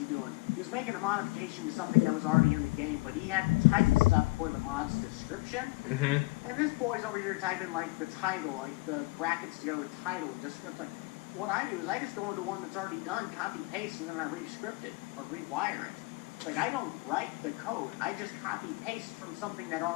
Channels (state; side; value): quieter; right; 23.7 dB